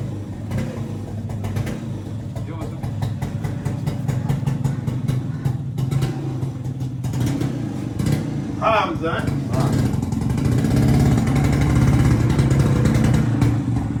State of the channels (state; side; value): identical; both; correlation 1.00